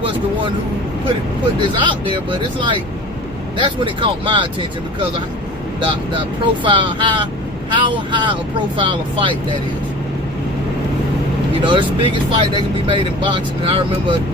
the one who put this out there, but it's like, that's when it caught my attention, because of the profile, how high a profile of fight that is. You know, it's the biggest fight that can be made in boxing, and I remember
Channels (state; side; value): normal; both; correlation 0.40